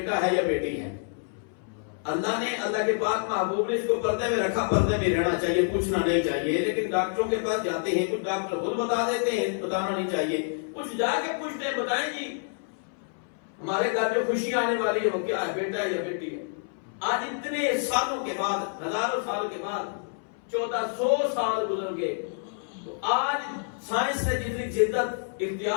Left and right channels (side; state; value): right; silent; 60 dB below the other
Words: ہے یا بیٹی ہے۔ اللہ نے، اللہ کے پاک محبوب نے اس کو پردے میں رکھا، پردے میں رہنا چاہیے، پوچھنا نہیں چاہیے، لیکن ڈاکٹروں کے پاس جاتے ہیں، کچھ ڈاکٹر خود بتا دیتے ہیں، بتانا نہیں چاہیے، کچھ جا کے پوچھتے ہیں، بتائیں جی ہمارے گھر جو خوشی آنے والی ہے وہ کیا ہے، بیٹا ہے یا بیٹی ہے؟ آج اتنے سالوں کے بعد، ہزاروں سال کے بعد، 1400 سال گزر گئے، تو آج سائنس نے جتنی جدت